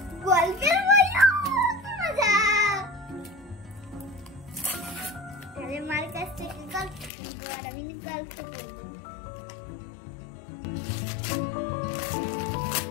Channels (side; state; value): right; drops out; at 7.1 s